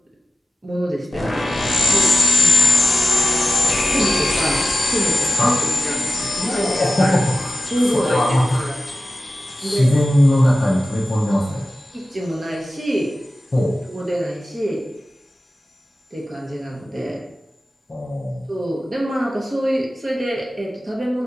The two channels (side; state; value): both; normal; correlation 0.96